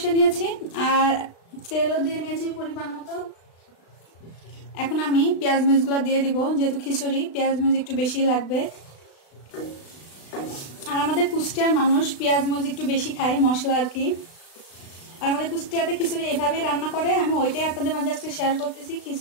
নিয়েছি আর তেলও দিয়ে নিয়েছি পরিমাণ মতো। এখন আমি পেঁয়াজ মরিচগুলো দিয়ে দিব, যেহেতু খিচুড়ি পেঁয়াজ মরিচ একটু বেশি লাগবে। আর আমাদের কুষ্টিয়ার মানুষ পেঁয়াজ মরিচ একটু বেশি খায় মশলা আর কি। আর আমাদের কুষ্টিয়াতে খিচুড়ি এভাবে রান্না করে, আমি ওইটাই আপনাদের মাঝে আজকে শেয়ার করতেছি।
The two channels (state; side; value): late; right; 36 ms